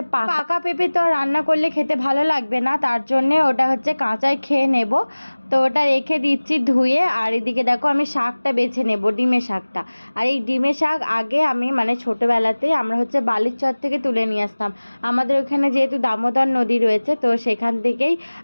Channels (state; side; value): inverted; both; correlation -1.00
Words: পাকা পেঁপে, তো রান্না করলে খেতে ভালো লাগবে না, তার জন্যে ওটা হচ্ছে কাঁচাই খেয়ে নেব। তো ওটা রেখে দিচ্ছি ধুয়ে। আর এদিকে দেখো আমি শাকটা বেছে নেব, ডিমের শাকটা। আর এই ডিমের শাক আগে আমি মানে ছোটোবেলাতেই আমরা হচ্ছে বালির চর থেকে তুলে নিয়ে আসতাম। আমাদের ওখানে যেহেতু দামোদর নদী রয়েছে, তো সেখান থেকেই